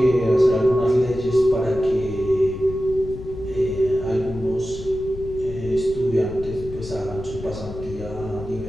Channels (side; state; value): left; noise; rumble, 12 dB below the sound